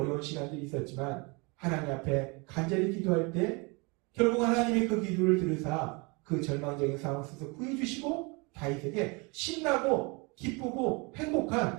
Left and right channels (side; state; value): left; quieter; 29.2 dB